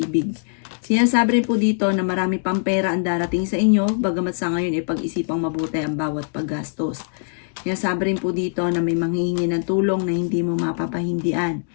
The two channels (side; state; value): right; silent; digital silence